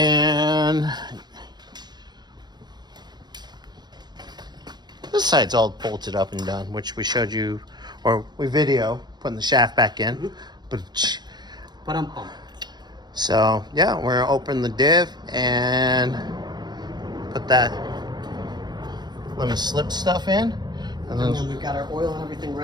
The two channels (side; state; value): left; late; 0.21 ms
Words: this side's all bolted up and done, which we showed you, or we video putting the shaft back in. So yeah, we're gonna open the diff and put that lemon slip stuff in, and then we've got our oil and everything